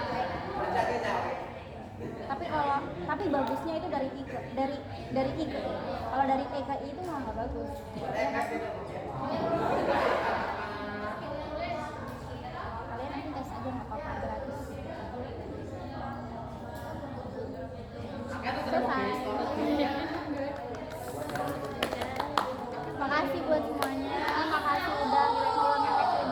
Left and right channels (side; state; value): both; identical; correlation 1.00